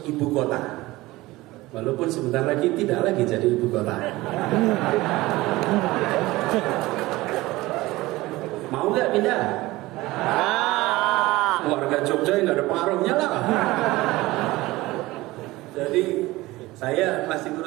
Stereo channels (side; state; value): left; quieter; 19.3 dB